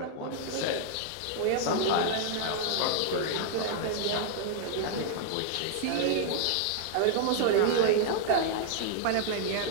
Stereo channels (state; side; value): different; both; correlation -0.01